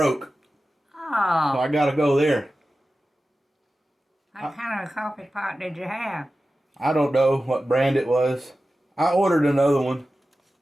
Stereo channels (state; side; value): normal; both; correlation 0.94